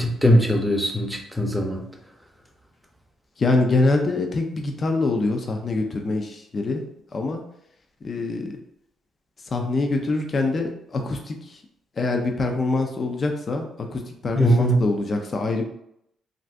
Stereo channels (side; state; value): both; normal; correlation 0.80